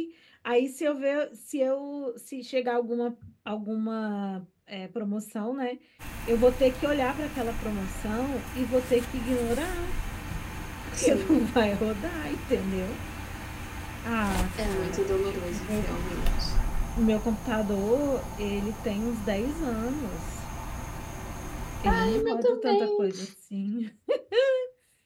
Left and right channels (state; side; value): identical; both; correlation 1.00